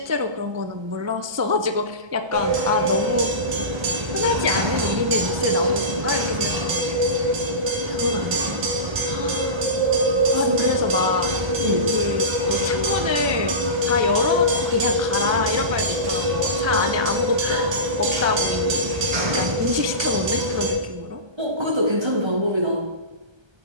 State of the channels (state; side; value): late; left; 1.3 ms